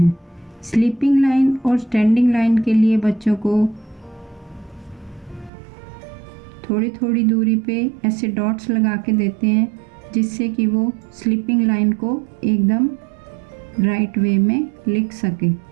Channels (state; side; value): drops out; left; at 5.5 s